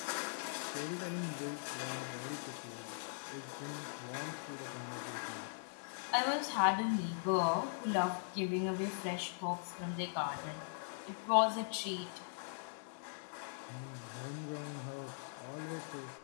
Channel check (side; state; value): right; silent; 51 dB below the other